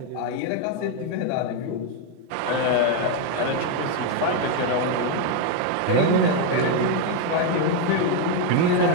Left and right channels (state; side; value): different; both; correlation 0.01